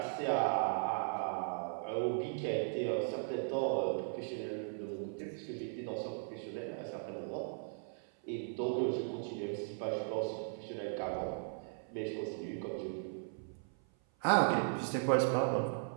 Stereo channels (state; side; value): silent; left; 53 dB below the other